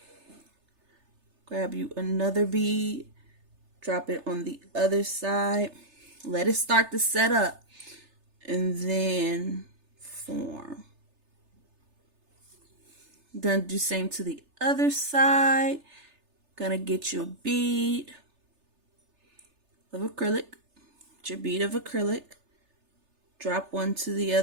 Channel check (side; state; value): left; late; 3.3 ms